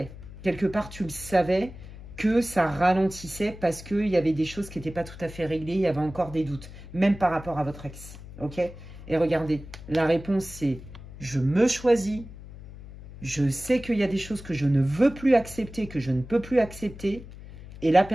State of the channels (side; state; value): left; noise; hum, 15 dB below the sound